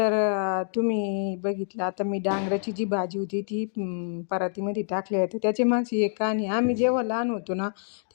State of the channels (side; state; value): right; silent; digital silence